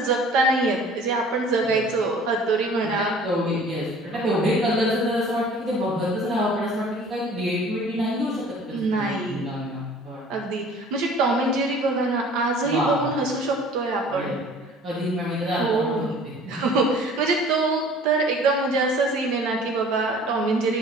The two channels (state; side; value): normal; both; correlation 0.49